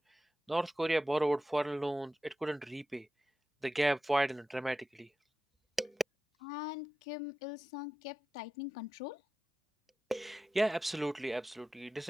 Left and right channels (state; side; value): normal; both; correlation 0.93